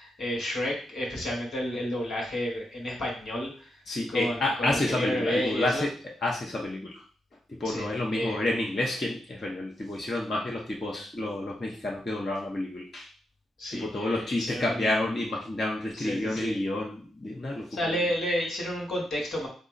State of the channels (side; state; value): both; normal; correlation 0.83